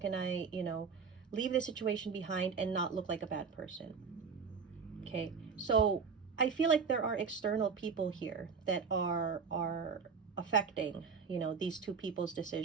I, leave this situation behind and not look like a bad person? Okay, so I feel like there are external people here that are affecting, these two people's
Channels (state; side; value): quieter; left; 5.7 dB